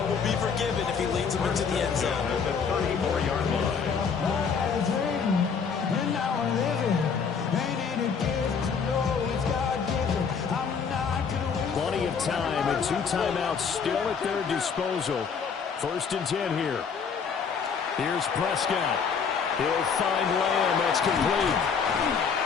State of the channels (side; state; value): right; quieter; 6.1 dB